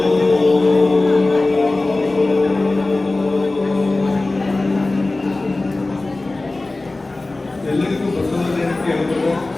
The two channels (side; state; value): right; quieter; 3.1 dB